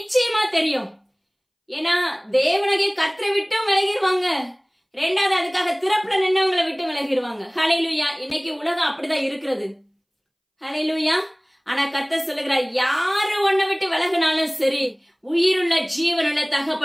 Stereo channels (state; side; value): identical; both; correlation 1.00